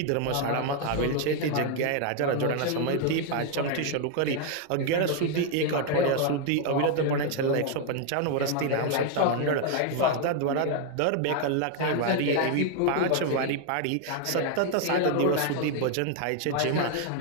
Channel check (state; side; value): different; both; correlation 0.01